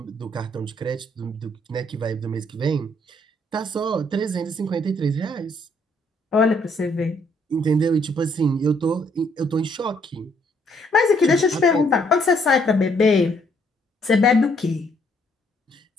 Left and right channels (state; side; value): normal; both; correlation 0.68